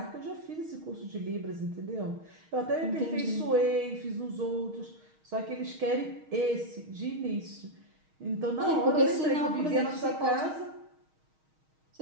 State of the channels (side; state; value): left; late; 6.4 ms